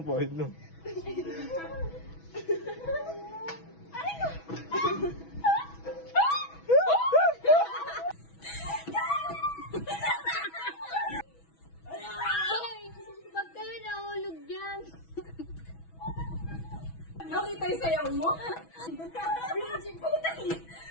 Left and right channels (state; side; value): late; right; 6.1 ms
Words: pahit no? Pag kayo nahulog dyan. Nakita yung sayaw mo? Binji, putang yun.